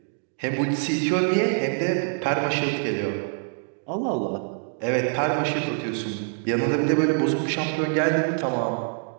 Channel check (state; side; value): silent; left; digital silence